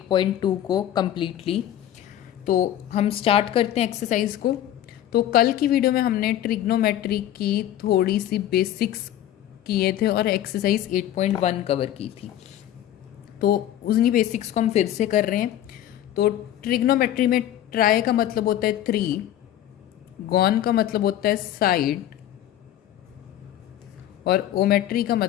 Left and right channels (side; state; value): right; quieter; 12.0 dB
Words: को कम्प्लीटली। तो हम स्टार्ट करते हैं एक्सरसाइज को। तो कल की वीडियो में हमने ट्रिग्नोमेट्री की थोड़ी सी बेसिक्स किए थे और एक्सरसाइज 8.1 कवर की थी। तो उन्हीं बेसिक्स को हम फिर से कर रहे हैं। तो ट्रिग्नोमेट्री में ट्राई का मतलब होता है 3, गॉन का मतलब होता है साइड और ओमेट्री का